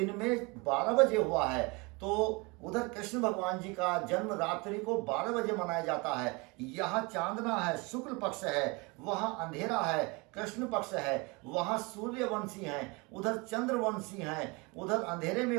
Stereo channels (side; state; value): left; quieter; 27.4 dB